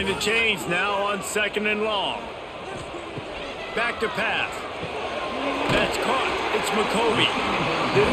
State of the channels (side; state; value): both; identical; correlation 1.00